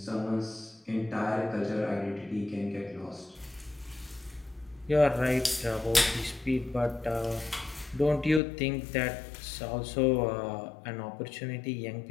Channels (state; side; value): drops out; right; at 8.4 s